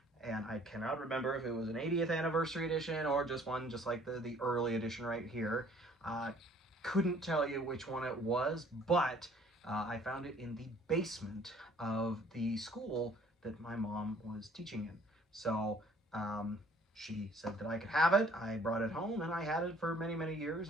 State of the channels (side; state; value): both; normal; correlation 0.57